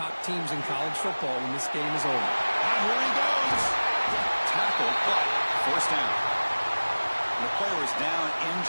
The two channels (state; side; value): inverted; both; correlation -1.00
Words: teams in college football when this game is over. And here he goes. Tackled, but first down. And the player is down